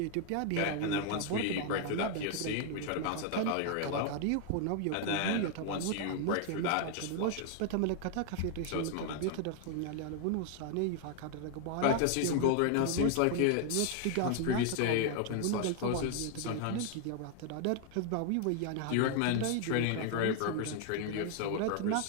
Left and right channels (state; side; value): different; both; correlation 0.00